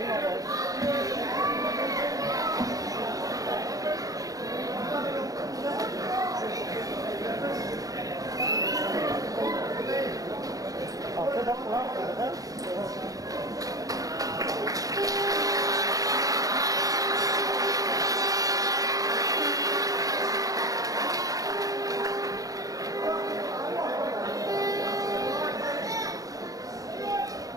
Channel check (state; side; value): late; left; 0.17 ms